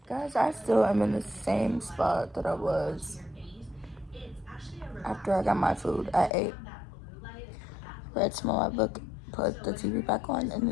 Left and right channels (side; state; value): right; drops out; at 6.3 s